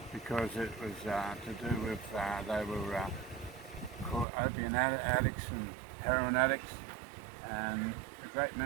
because it was to do with, they were called opium addicts and heroin addicts, and a great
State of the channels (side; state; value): left; drops out; at 4.2 s